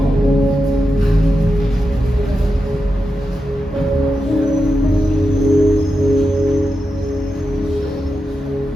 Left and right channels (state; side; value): normal; both; correlation 0.89